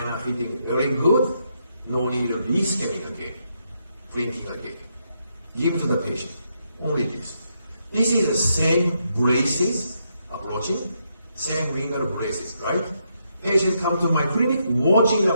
fitting very good, no need of rescanning again, printing again. Give to the patient, only this. This is the same braces approaching, same ringer braces, right? Patient come to my clinic, watching the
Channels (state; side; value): inverted; both; correlation -0.79